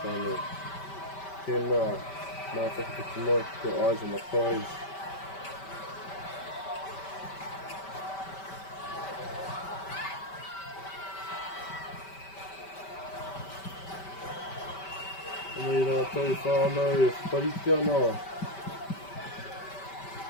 whānau. Tēnā, mā whakatiki tonight, got eyes on the prize. Anei rātou whānau, whariti ana.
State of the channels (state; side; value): late; right; 5.2 ms